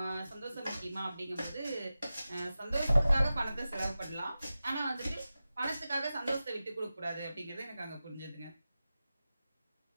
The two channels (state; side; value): inverted; both; correlation -0.94